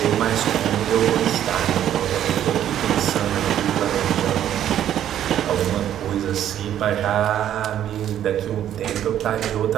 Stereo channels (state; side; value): quieter; left; 10.9 dB